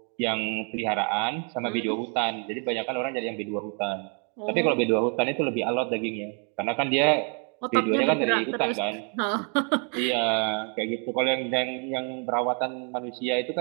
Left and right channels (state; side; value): quieter; left; 39.4 dB